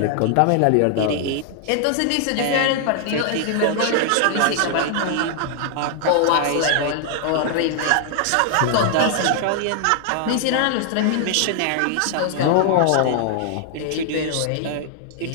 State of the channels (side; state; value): both; different; correlation 0.00